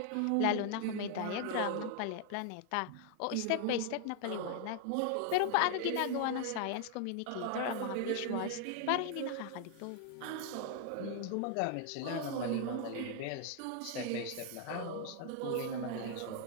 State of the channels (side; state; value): both; different; correlation 0.00